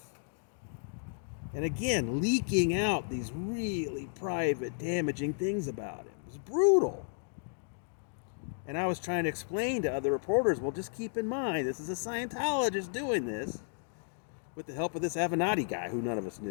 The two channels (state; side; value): silent; right; digital silence